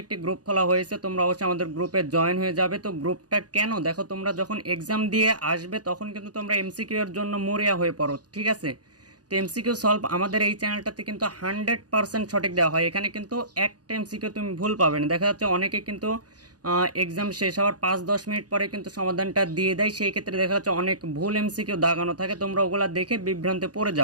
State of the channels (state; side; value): late; left; 0.69 ms